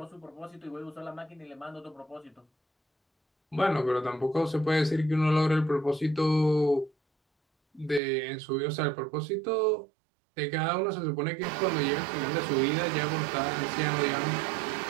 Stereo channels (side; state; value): left; drops out; at 8.0 s